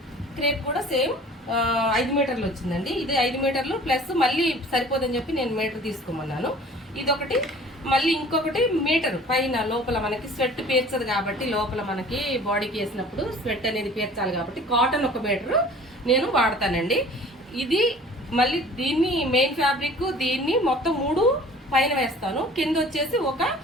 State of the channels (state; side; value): normal; both; correlation 0.47